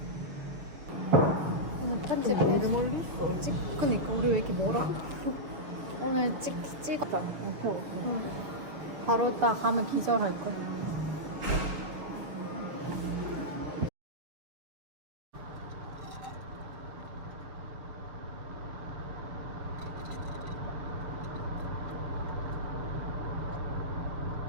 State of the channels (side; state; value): left; late; 7.0 ms